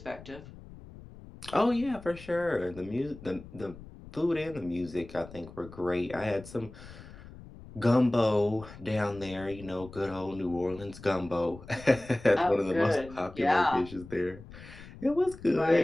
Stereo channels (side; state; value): left; noise; rumble, 17 dB below the sound